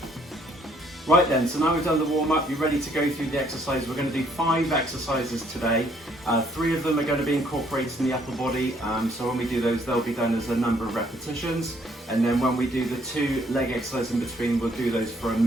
Right then, so now we've done the warm-up, you're ready to go through the exercise. We're going to do 5 exercises today. 3 of them are going to be incorporated in the upper body. So when we do those, they'll be done as a number of repetitions. And then when we do the 2 leg exercises in between, we'll do those for a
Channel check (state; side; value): normal; both; correlation 0.65